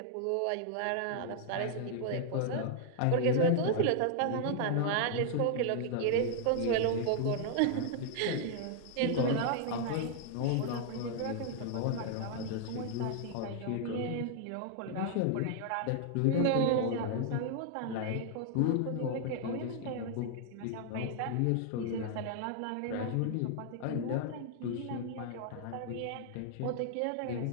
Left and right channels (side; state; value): both; different; correlation -0.01